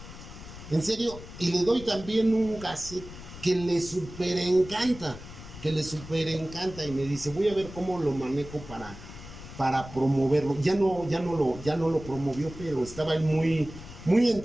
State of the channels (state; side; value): noise; left; rumble, 14 dB below the sound